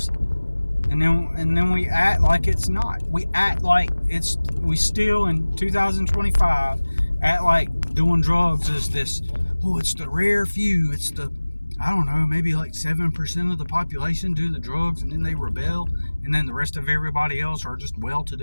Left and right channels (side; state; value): both; inverted; correlation -1.00